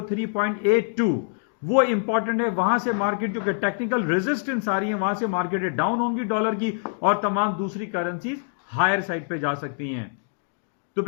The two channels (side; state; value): right; silent; 62 dB below the other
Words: वो इंपॉर्टेंट है। वहां से मार्केट जो कि टेक्निकल रेजिस्टेंस आ रही है वहां से मार्केट डाउन होंगी डॉलर की और तमाम दूसरी करेंसीज हायर साइड पे जा सकती हैं। तो